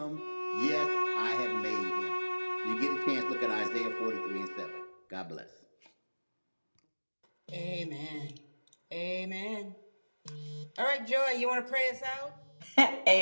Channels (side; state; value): both; inverted; correlation -1.00